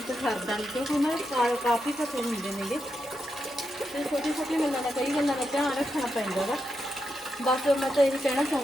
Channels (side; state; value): both; normal; correlation 0.85